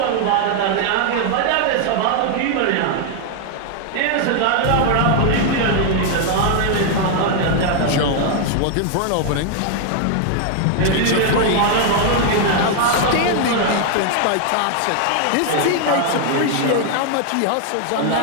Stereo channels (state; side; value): different; both; correlation 0.00